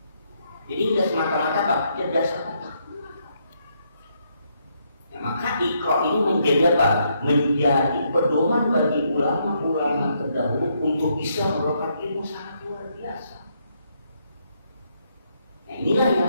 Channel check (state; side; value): inverted; both; correlation -0.75